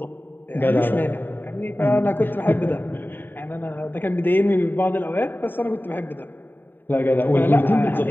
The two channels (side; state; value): right; late; 0.094 ms